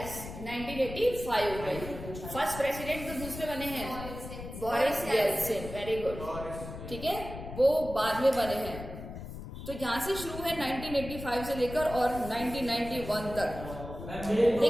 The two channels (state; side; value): noise; left; rumble, 10 dB below the sound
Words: 1985 में। फर्स्ट प्रेसिडेंट तो दूसरे बने हैं, बोरिस येल्सिन। वेरी गुड, ठीक है, वो बाद में बने हैं। तो यहाँ से शुरू है 1985 से लेकर और 1991 तक।